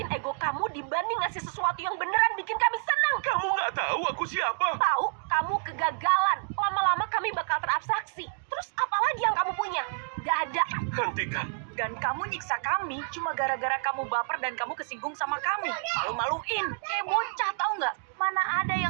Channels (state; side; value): silent; left; 59 dB below the other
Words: ego kamu dibanding ngasih sesuatu yang beneran bikin kami senang. Kamu nggak tahu aku siapa? Tahu, kamu kegagalan. Lama-lama kami bakal terabstraksi. Terus apa lagi yang kamu punya? Gak ada. Hentikan. Dan kamu nyiksa kami cuma gara-gara kamu baper dan kamu kesinggung sama kami. Malu-maluin. Kayak bocah, tahu nggak? Mana ada